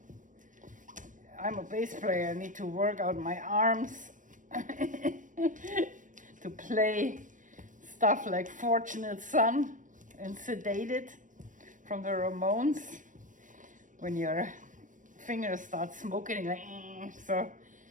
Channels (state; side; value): late; left; 0.37 ms